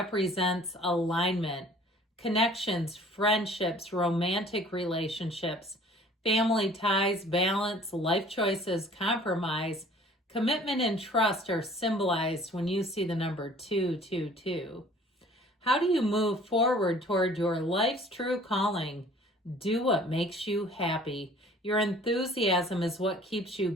alignment, connections, friendships, romantic relationships, family ties, balance, life choices, compromise, commitment, and trust are symbolized when you see the number 222. How do you move forward toward your life's true calling? Do what makes you happy. Your enthusiasm is what keeps you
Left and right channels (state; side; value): normal; both; correlation 0.51